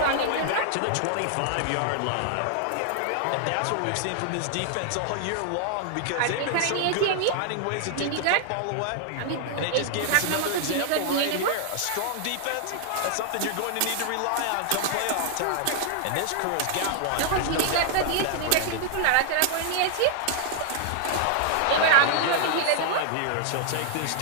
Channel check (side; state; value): both; different; correlation 0.00